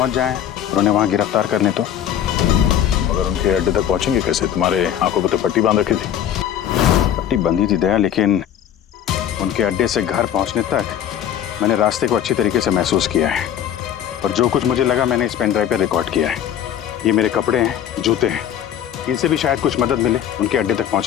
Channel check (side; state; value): right; quieter; 10.1 dB